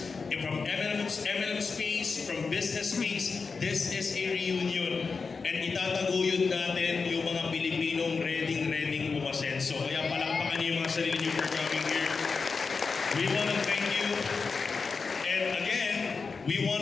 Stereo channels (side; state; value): right; quieter; 4.8 dB